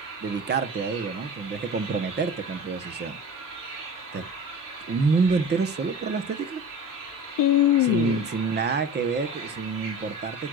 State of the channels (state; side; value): normal; both; correlation 0.35